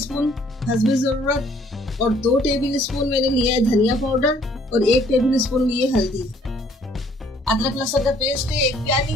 हस्बे जरूरत, और 2 टेबल स्पून मैंने लिया है धनिया पाउडर, और 1 टेबल स्पून लिए हल्दी। अदरक लहसुन का पेस्ट है 1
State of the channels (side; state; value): both; normal; correlation 0.61